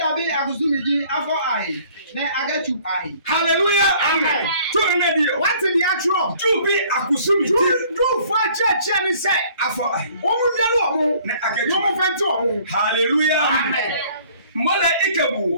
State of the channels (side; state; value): both; inverted; correlation -0.56